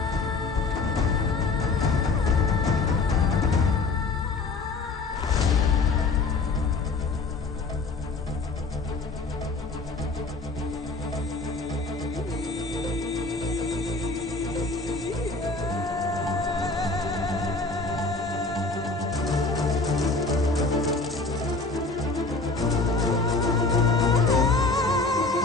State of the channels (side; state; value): right; quieter; 3.7 dB